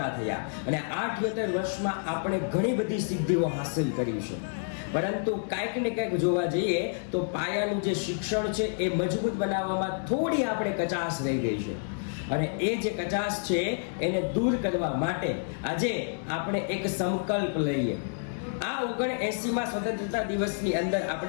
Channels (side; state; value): right; silent; digital silence